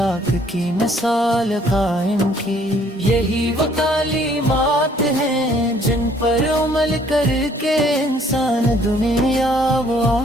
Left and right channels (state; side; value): normal; both; correlation 0.61